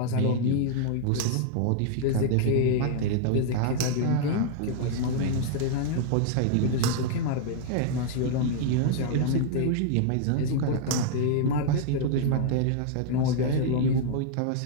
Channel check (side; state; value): both; different; correlation -0.01